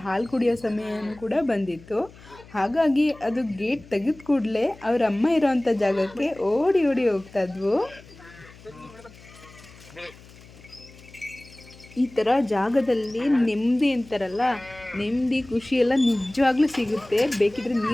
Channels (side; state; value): left; noise; hum, 22 dB below the sound